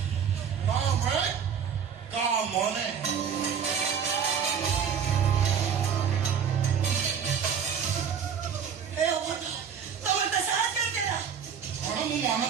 କାମେ କାମନେ ଏ ଅବଧ ତମର ତ ସାହସ କରିଦେଲା କଣ ମୁଁ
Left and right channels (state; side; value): quieter; left; 7.4 dB